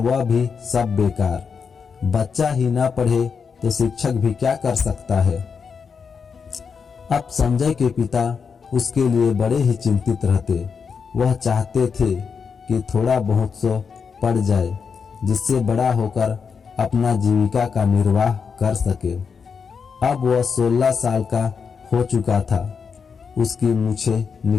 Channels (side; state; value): right; quieter; 5.9 dB